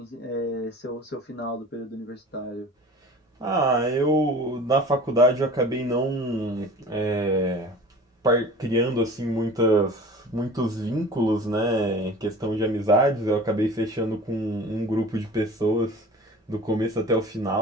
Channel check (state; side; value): normal; both; correlation 0.41